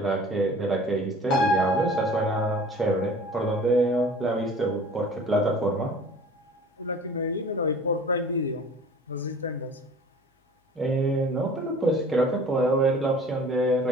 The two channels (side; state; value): both; normal; correlation 0.46